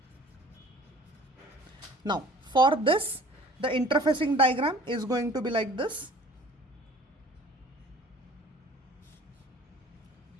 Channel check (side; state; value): both; normal; correlation 0.48